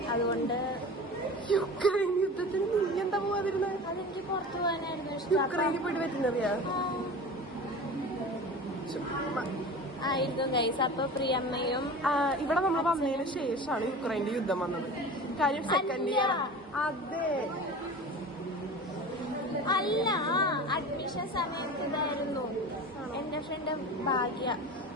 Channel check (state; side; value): normal; both; correlation 0.34